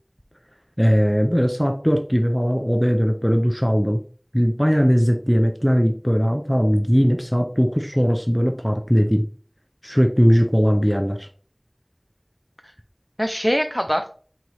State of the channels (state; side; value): identical; both; correlation 1.00